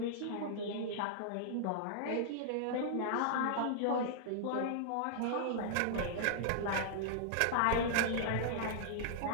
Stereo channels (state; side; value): different; both; correlation -0.01